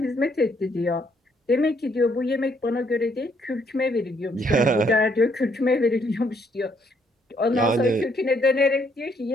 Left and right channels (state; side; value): normal; both; correlation 0.70